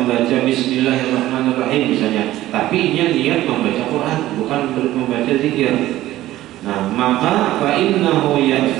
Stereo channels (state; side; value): quieter; left; 15.1 dB